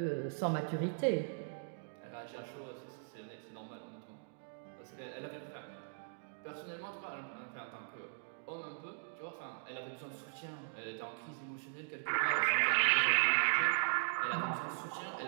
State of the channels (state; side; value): silent; left; digital silence